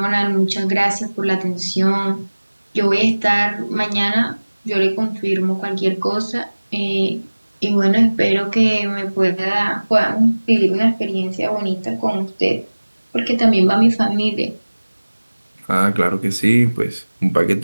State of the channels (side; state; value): both; inverted; correlation -1.00